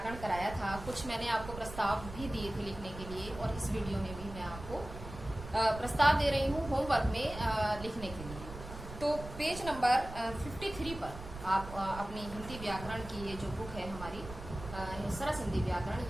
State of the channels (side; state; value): right; noise; rumble, 11 dB below the sound